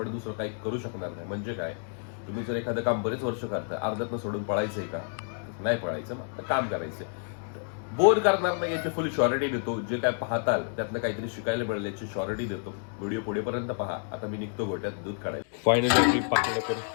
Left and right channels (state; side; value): silent; right; 58 dB below the other